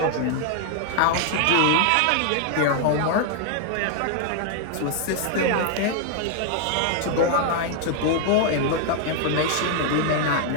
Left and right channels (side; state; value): both; different; correlation 0.00